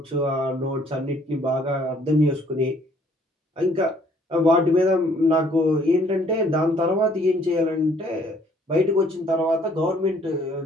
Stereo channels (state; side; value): normal; both; correlation 0.62